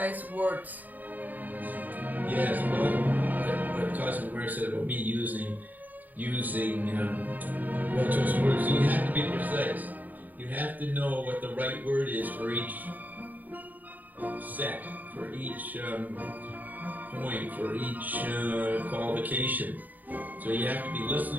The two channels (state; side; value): late; left; 0.083 ms